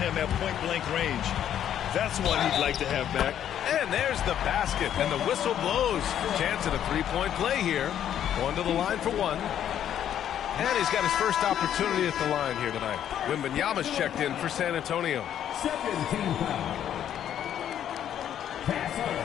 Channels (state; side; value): quieter; right; 10.2 dB